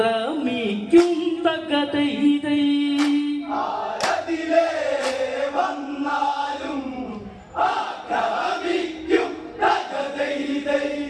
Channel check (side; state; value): both; identical; correlation 1.00